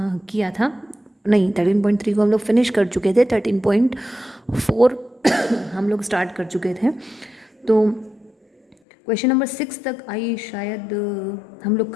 किया था। नहीं, 13.3 को हम लोग फिनिश कर चुके थे। 13.4 हम लोग स्टार्ट कर चुके थे। तो क्वेश्चन नंबर 6 तक शायद हम लोग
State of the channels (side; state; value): right; drops out; at 8.8 s